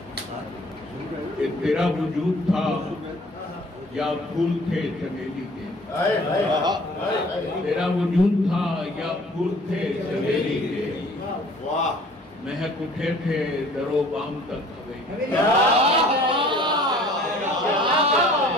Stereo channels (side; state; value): both; normal; correlation 0.52